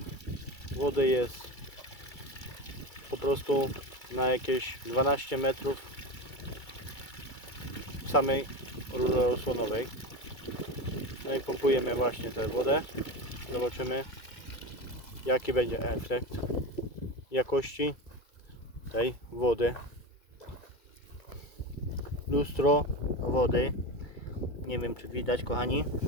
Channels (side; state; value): right; late; 2.3 ms